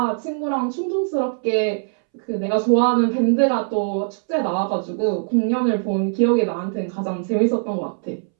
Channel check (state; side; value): silent; left; 65 dB below the other